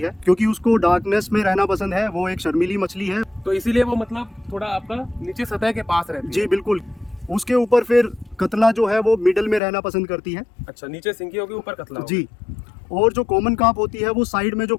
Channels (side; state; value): right; drops out; at 9.6 s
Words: क्योंकि उसको डार्कनेस में रहना पसंद है। वो एक शर्मीली मछली है, तो इसीलिए वो मतलब थोड़ा आपका नीचे सतह के पास रहती है। जी बिल्कुल। उसके ऊपर फिर कतला जो है वो मिडल में रहना पसंद करती है। अच्छा, नीचे सिंगी होगी, ऊपर कतला होगा। जी। और जो कॉमन कार्प होती है वो साइड में जो